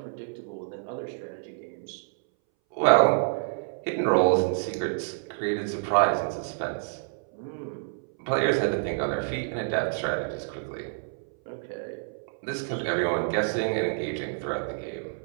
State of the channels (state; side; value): silent; left; 59 dB below the other